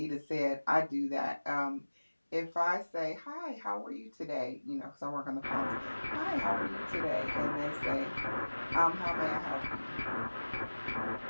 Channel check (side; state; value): both; inverted; correlation -1.00